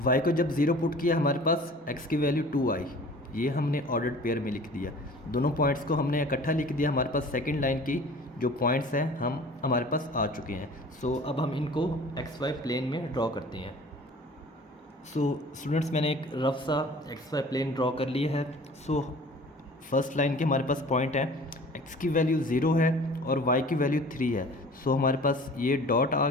y को जब 0 पुट किया हमारे पास x की वैल्यू 2 आई, ये हमने ऑर्डर्ड पेयर में लिख दिया। दोनों पॉइंट्स को हमने इकट्ठा लिख दिया। हमारे पास सेकंड लाइन की जो पॉइंट्स हैं हमारे पास आ चुके हैं। सो अब हम इनको XY प्लेन में ड्रॉ करते हैं। सो स्टूडेंट्स, मैंने एक रफ सा XY प्लेन ड्रॉ कर लिया है। सो फर्स्ट लाइन के हमारे पास पॉइंट है, x की वैल्यू 0 है और y की वैल्यू 3 है। सो हमारे पास ये डॉट आ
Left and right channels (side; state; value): both; normal; correlation 0.45